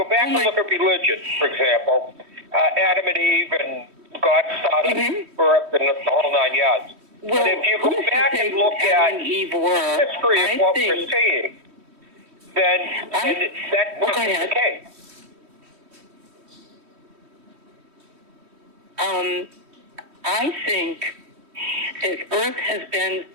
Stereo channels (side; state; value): left; late; 3.1 ms